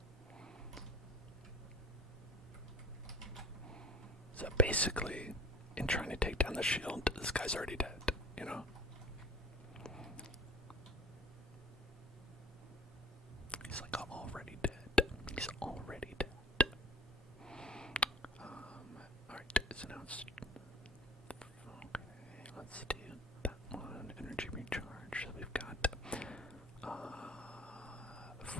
So basically, in trying to take down the shield, this guy's already dead, you know? He's like already dead. He's already dead. Alright, so now it's... Okay, let's do that one. Energy recharge. So we've got...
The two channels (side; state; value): both; normal; correlation 0.45